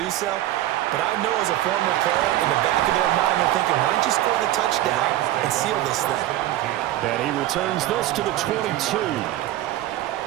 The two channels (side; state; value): left; quieter; 14.3 dB